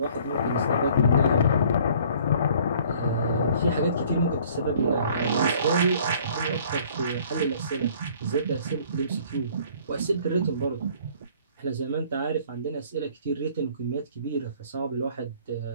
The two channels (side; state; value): both; inverted; correlation -0.55